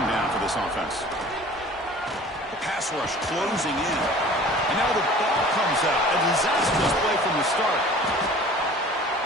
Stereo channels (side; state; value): both; normal; correlation 0.45